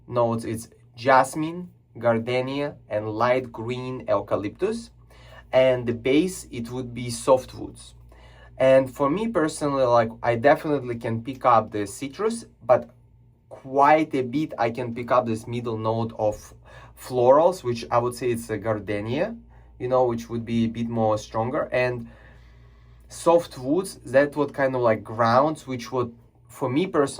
notes is jasmine, gardenia, and light green eucalyptus. And the base, it would be softwoods. And for me personally, like I definitely can pick up the citrus, but quite a bit I can pick up this middle note of florals, which I would say it's a gardenia, you know, which would be a bit more stronger. And soft woods, that what kind of like grounds, which would, for me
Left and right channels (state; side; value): identical; both; correlation 1.00